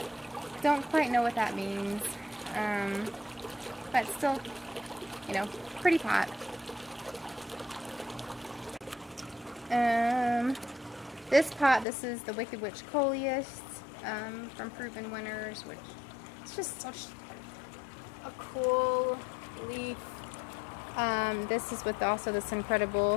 Don't quite know what that means, but still, you know, pretty pot. This pot, this is the Wicked Witch Coleus from Proven Winners, which is just such a cool leaf. This is with also this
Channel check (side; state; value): right; drops out; at 11.9 s